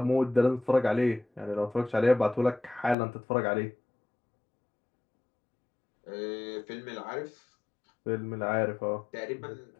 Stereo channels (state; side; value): drops out; right; at 3.0 s